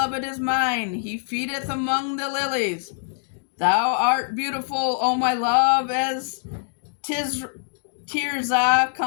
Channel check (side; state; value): right; silent; digital silence